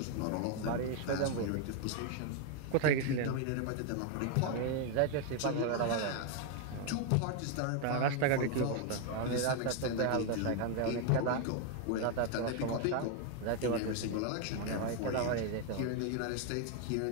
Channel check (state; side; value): different; both; correlation 0.01